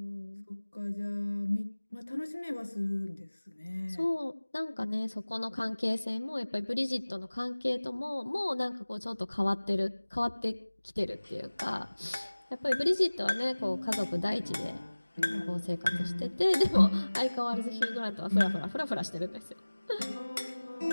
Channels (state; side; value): inverted; both; correlation -1.00